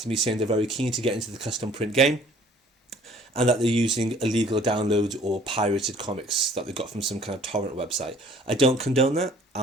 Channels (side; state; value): both; normal; correlation 0.55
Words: me saying they're very keen to get into the custom print game, and that they're using illegal downloads or pirated comics that they got from some kind of torrent website. I don't condone that.